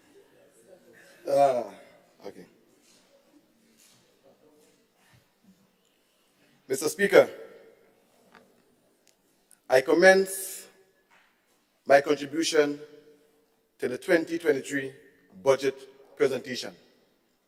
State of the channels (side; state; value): both; identical; correlation 1.00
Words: Okay. Mr. Speaker, I commence my contribution to the 2023 budget presentation